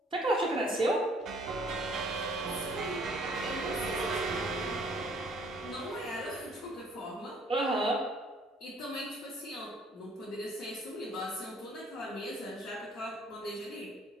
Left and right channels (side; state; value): both; normal; correlation 0.59